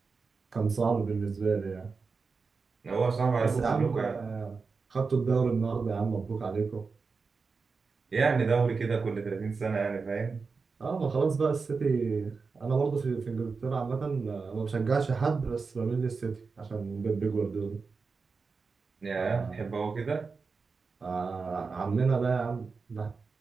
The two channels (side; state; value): left; quieter; 4.7 dB